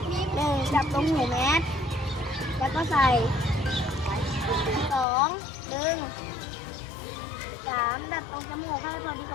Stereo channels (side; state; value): right; drops out; at 5.1 s